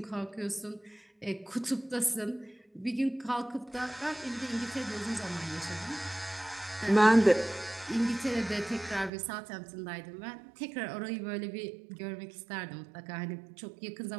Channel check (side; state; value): left; drops out; at 9.1 s